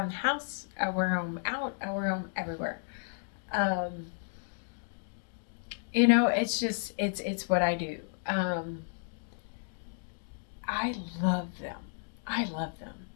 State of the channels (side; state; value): right; silent; digital silence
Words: the house. I wear them out. I wear them everywhere. Um, it's just it's what I do. Um, I love them. I love them.